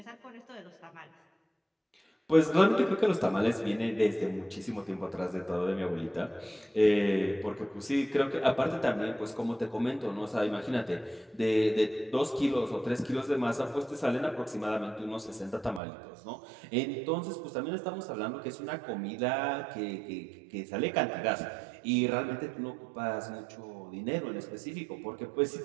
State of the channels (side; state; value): left; drops out; at 15.8 s